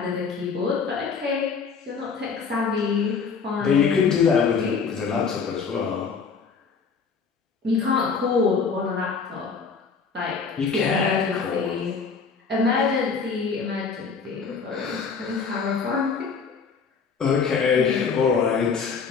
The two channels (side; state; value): right; quieter; 5.5 dB